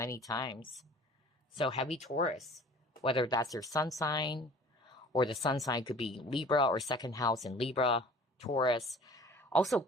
times. So heavy Taurus, whether that's your sun sign, or the sun sign could be Libra or second house in Libra, Taurus. Also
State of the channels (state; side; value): normal; both; correlation 0.47